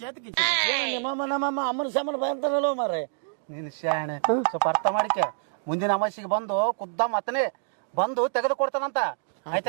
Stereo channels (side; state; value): left; silent; digital silence